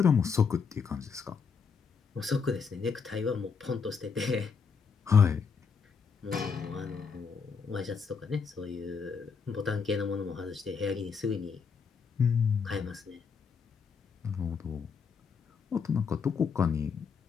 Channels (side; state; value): right; quieter; 5.8 dB